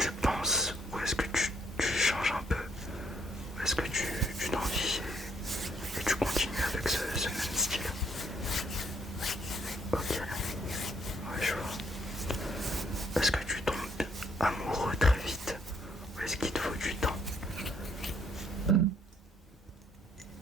penses ou amoureux très vite ou est-ce qu'il te faut du temps?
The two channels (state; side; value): normal; both; correlation 0.69